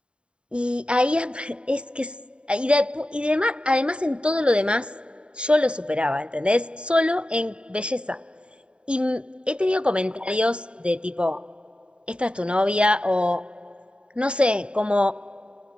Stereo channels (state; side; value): late; left; 0.054 ms